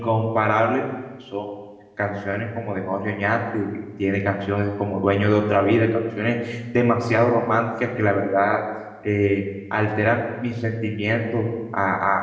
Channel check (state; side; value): identical; both; correlation 1.00